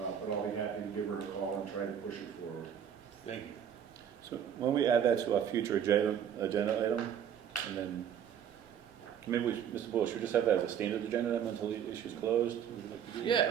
I'll be happy to give her a call and try to push it forward. Thank you. So when we add that to our future agenda item, and then maybe we, Mr. Bull, should we just have that as a standard agenda item until the issue's closed? Would you like to do Yeah,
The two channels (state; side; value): quieter; left; 8.8 dB